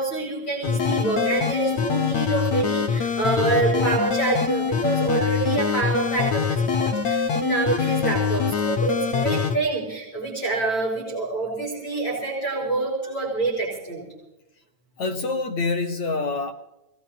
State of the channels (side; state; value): right; late; 9.0 ms